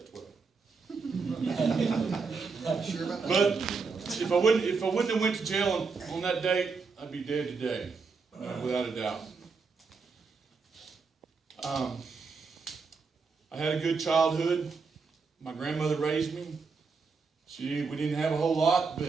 12. Sure about that? But if I wouldn't have went to jail on that date, I'd be dead today, without a doubt. I had a good childhood. My grandmother raised me. We didn't have a whole lot,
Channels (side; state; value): left; quieter; 4.8 dB